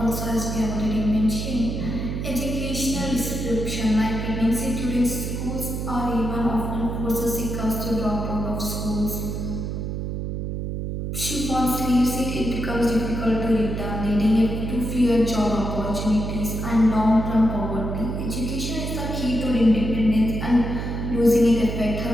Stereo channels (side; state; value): right; noise; hum, 3 dB below the sound